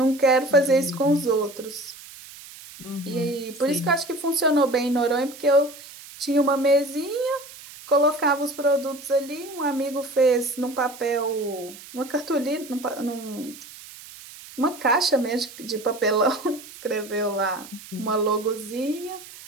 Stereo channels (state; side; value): noise; right; hiss, 17 dB below the sound